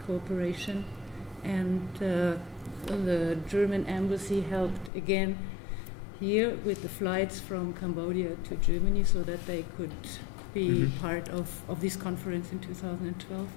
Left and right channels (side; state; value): right; drops out; at 4.9 s